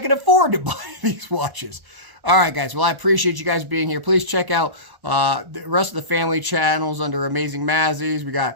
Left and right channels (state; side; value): late; left; 1.0 ms